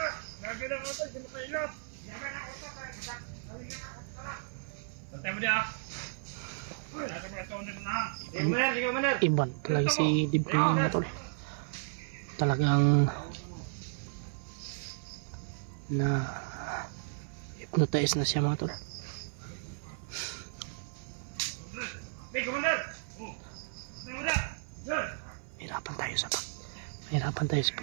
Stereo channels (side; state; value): left; silent; 55 dB below the other